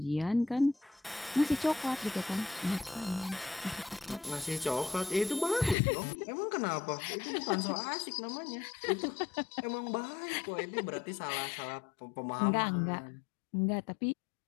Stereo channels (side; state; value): right; drops out; at 5.8 s